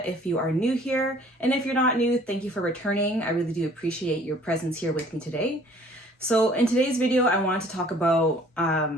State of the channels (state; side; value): normal; both; correlation 0.55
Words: if you are new here, and if you're not new, thank you for returning. I really do appreciate your presence here with me today. So in today's video, I wanted to talk about